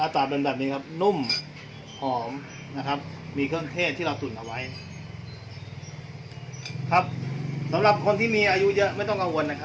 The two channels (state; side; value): identical; both; correlation 1.00